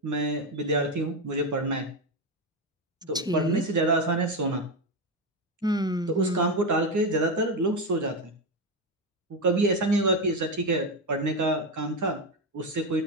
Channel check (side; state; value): both; normal; correlation 0.11